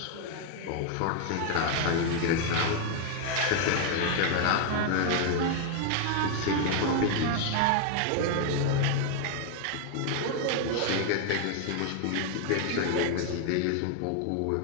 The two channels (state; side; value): different; both; correlation 0.00